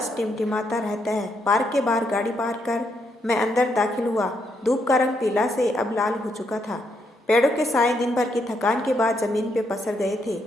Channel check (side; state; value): both; normal; correlation 0.77